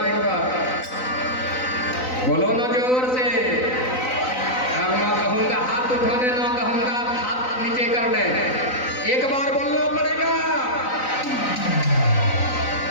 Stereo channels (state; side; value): late; right; 3.9 ms